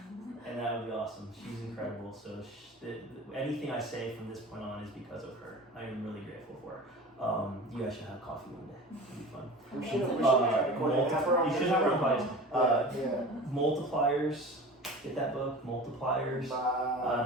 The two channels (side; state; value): both; normal; correlation 0.36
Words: and that would be awesome. She's incredible. So anything I say from this point on is because of her. I am really grateful for her. You guys should have coffee one day. It'd be fun. We should You should have her Multipliers. Get that book, Multipliers. I